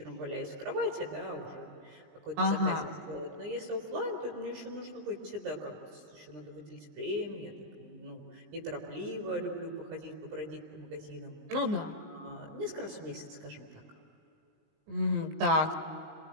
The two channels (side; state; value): left; late; 20 ms